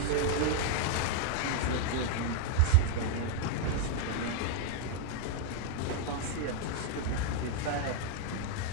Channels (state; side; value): different; both; correlation 0.00